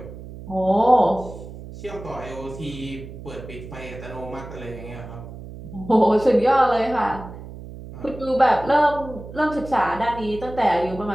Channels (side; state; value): right; noise; hum, 13 dB below the sound